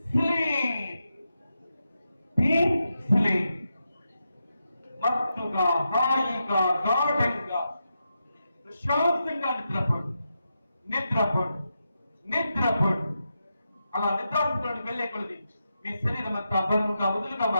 sleep, deep sleep. మత్తుగా హాయిగా గాఢంగా ప్రశాంతంగా నిద్రపోండి, నిద్రపోండి, నిద్రపోండి. అలా నిద్రాస్థితిలోకి వెళ్లే కొలది మీ శరీరం అంతా బరువుగా వదులుగా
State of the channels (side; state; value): both; inverted; correlation -0.87